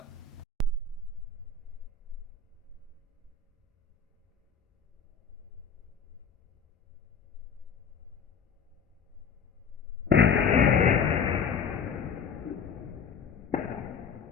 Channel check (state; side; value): quieter; right; 6.0 dB